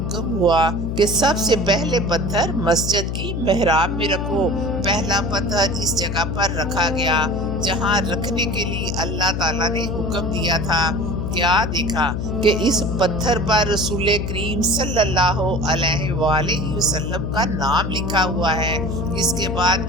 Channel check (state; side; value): noise; left; hum, 3 dB below the sound